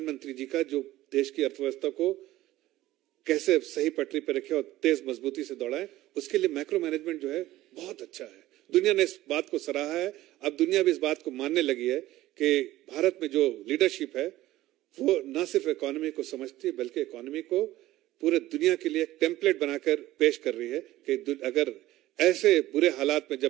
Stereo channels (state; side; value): quieter; left; 15.8 dB